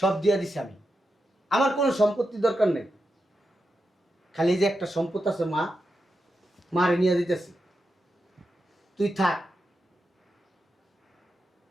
দিয়ে দিছি আমি, আমার কোনো সম্পত্তি দরকার নেই। খালি যে একটা সম্পদ আছে মা, মারে নিয়ে দিতেছি, তুই থাক,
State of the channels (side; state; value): both; normal; correlation 0.88